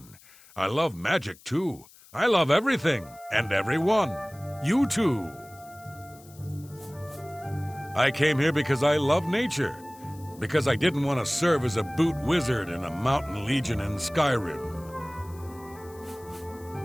I love magic too. I love everything and everyone. You too. I came here because I love nature. Because I didn't want to serve as a boot wizard in a mountain legion in Skyrim.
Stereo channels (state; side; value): noise; left; hiss, 24 dB below the sound